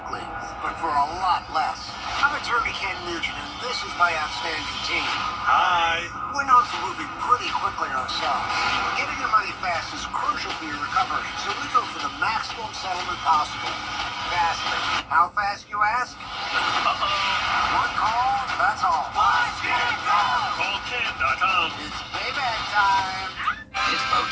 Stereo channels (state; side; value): identical; both; correlation 1.00